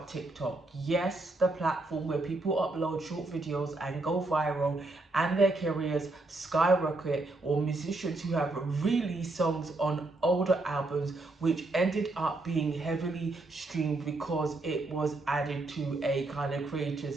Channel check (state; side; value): quieter; left; 3.0 dB